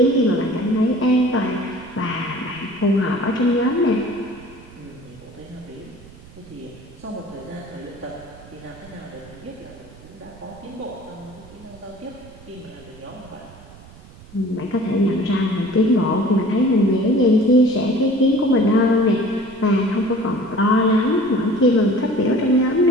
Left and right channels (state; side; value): noise; right; rumble, 21 dB below the sound